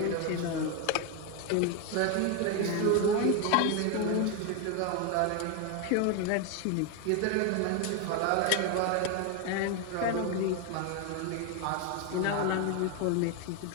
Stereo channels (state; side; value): different; both; correlation 0.01